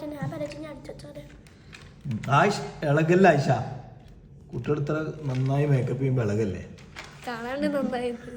ആയിഷ ഇളകല്ലേ? ആയിഷ കുട്ടികൾ ഇത്ര നന്നായി മേക്കപ്പ് ചെയ്യുമ്പോ ഇളകല്ലേ?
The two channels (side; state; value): both; identical; correlation 1.00